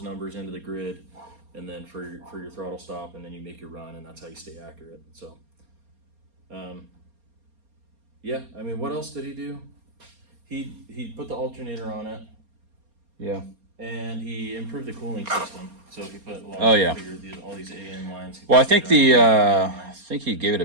numbers into the grid, and then for your throttle stop, and then you make your run, and that's how you stay accurate. So, yeah. I mean, what else did he do? He put the alternator on it, Yeah. and he improved the cooling system. So he put a lot Oh, yeah. all these AN lines. Well, I think I think he gave it a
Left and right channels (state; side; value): late; left; 4.3 ms